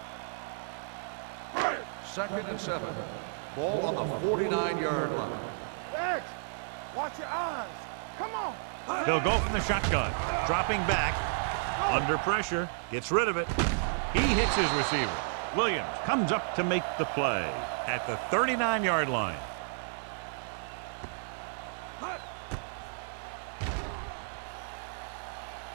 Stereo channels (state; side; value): silent; left; digital silence